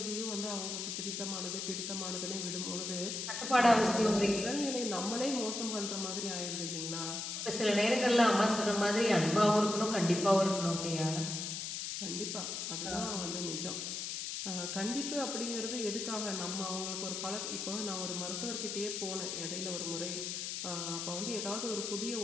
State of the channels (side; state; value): left; noise; hiss, 4 dB below the sound